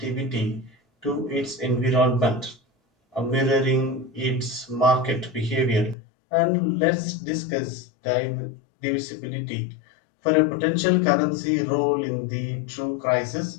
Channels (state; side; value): drops out; right; at 6.0 s